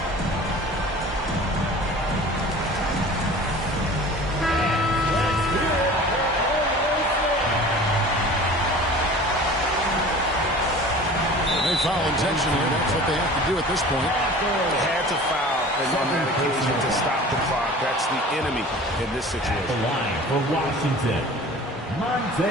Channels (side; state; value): both; normal; correlation 0.42